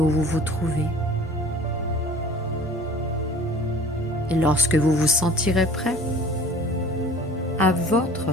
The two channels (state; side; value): normal; both; correlation 0.47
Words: vous vous trouvez. Et lorsque vous vous sentirez prêt, à votre